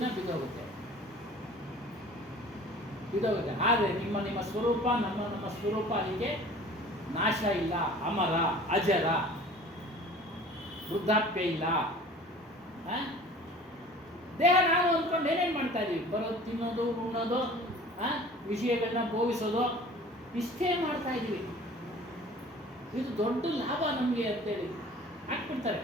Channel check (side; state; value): both; normal; correlation 0.45